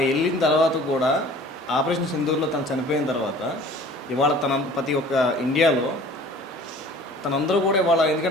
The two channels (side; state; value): both; normal; correlation 0.47